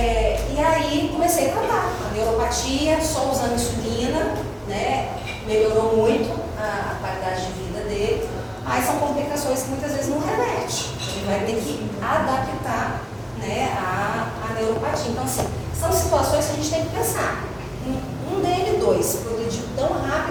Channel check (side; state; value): both; identical; correlation 1.00